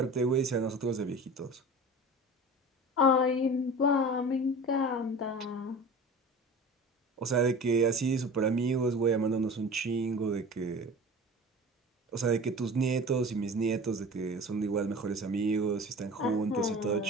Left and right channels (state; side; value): normal; both; correlation 0.37